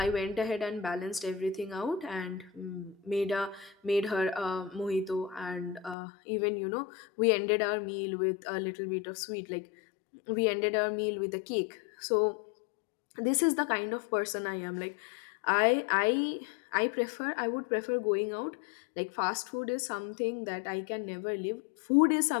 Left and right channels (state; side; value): drops out; right; at 6.0 s